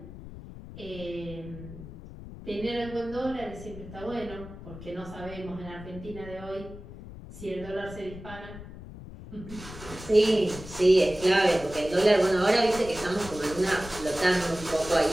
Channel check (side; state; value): left; noise; rumble, 14 dB below the sound